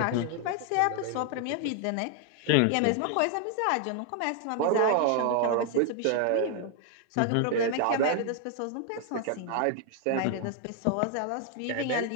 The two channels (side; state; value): both; different; correlation 0.00